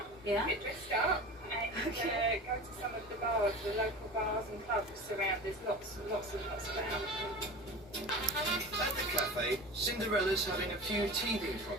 Yeah. get dressed up, and go to some of the bars, the local bars and clubs around. There's lots about. At the cafe, Cinderella's having a few teething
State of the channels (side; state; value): both; normal; correlation 0.33